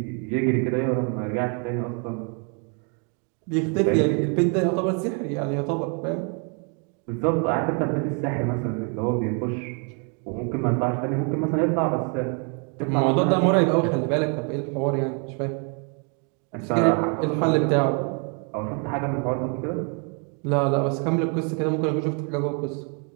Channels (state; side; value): quieter; left; 38.1 dB